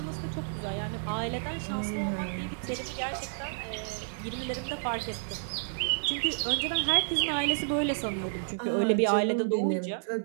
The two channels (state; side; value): silent; left; digital silence